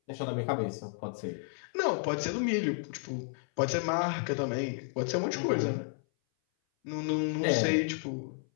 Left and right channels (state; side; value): silent; right; 56 dB below the other